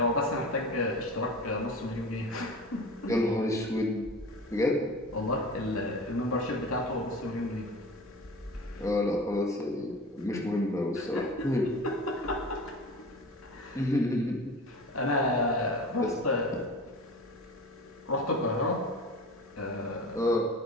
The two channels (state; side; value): normal; both; correlation 0.36